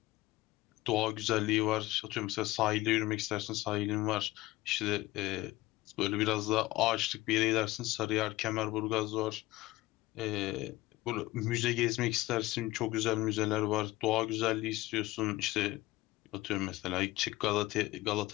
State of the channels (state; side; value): quieter; right; 18.2 dB